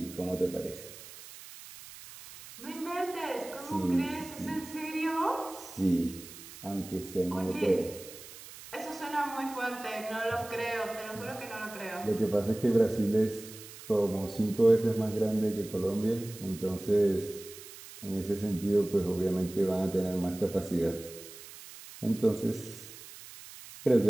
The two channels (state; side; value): noise; right; hiss, 16 dB below the sound